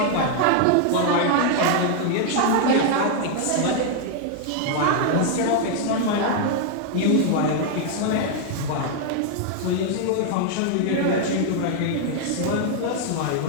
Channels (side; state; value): both; different; correlation 0.00